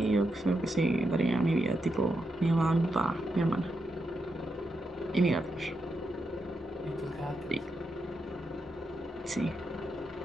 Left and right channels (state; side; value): normal; both; correlation 0.85